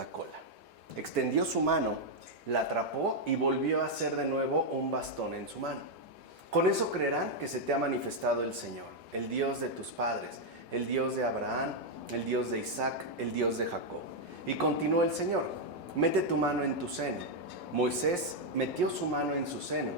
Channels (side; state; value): both; normal; correlation -0.01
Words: cola. Extendió su mano, la atrapó y volvió a hacer de nuevo un bastón en su mano. Con eso creerán que se te ha manifestado el Señor, el Dios de tus padres, el Dios de Abraham, el Dios de Isaac, el Dios de Jacob. Y continuó el Señor: mete tu mano en tu seno. Moisés metió su mano en su seno,